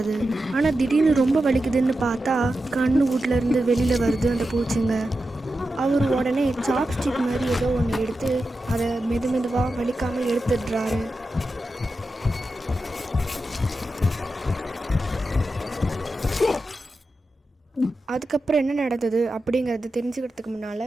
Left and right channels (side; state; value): both; normal; correlation 0.91